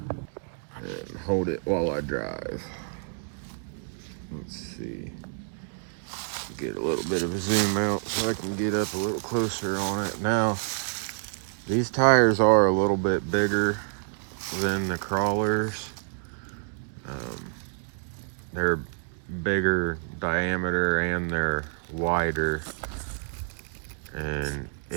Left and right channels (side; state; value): left; silent; digital silence